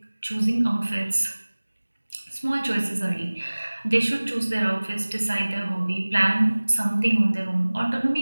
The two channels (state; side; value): inverted; both; correlation -1.00